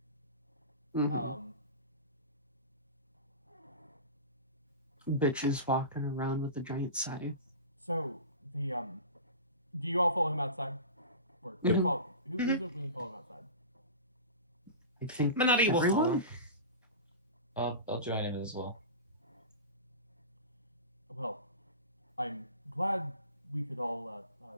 Mhm. Bitches walking around with a giant scythe. So the do you all follow him outside? Or who's going to follow him outside? I think Menotti will follow. everyone. I'll join him as well. Well, I'm glad we could all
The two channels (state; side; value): inverted; both; correlation -0.31